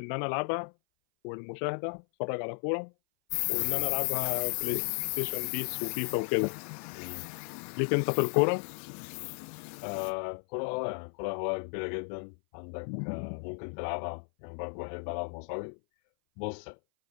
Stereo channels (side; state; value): right; silent; 55 dB below the other